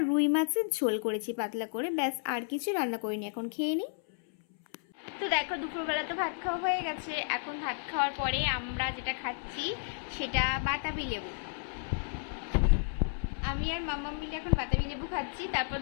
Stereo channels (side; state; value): right; silent; 56 dB below the other